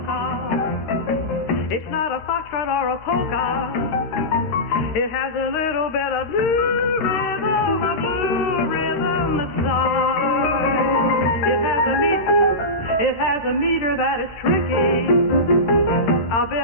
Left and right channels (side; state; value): right; late; 13 ms